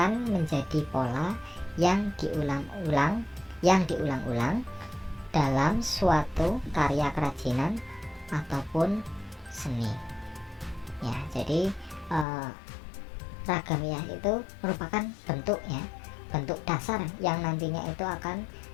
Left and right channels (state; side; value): drops out; right; at 12.2 s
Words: menjadi pola yang diulang-ulang dalam suatu karya kerajinan ataupun seni. Ya, jadi ragam hias itu merupakan bentuk dasar yang nantinya itu akan